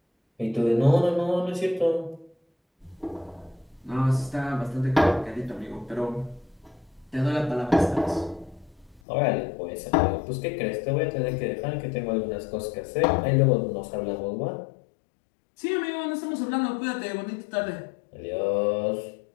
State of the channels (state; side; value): drops out; right; at 9.0 s